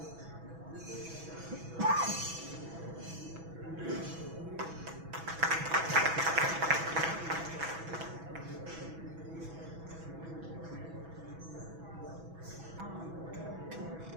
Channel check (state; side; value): late; left; 6.1 ms